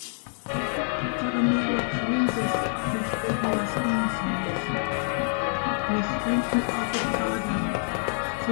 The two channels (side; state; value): right; silent; 59 dB below the other